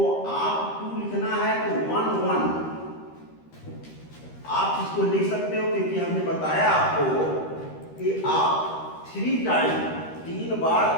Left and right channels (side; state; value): right; late; 13 ms